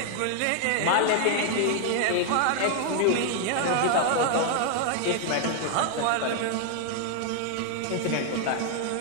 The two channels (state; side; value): different; both; correlation 0.00